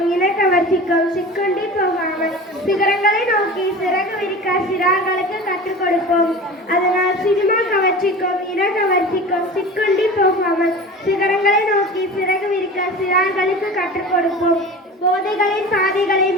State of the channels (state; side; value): normal; both; correlation 0.35